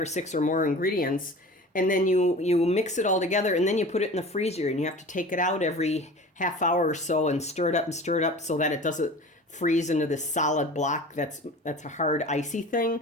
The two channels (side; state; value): both; normal; correlation 0.38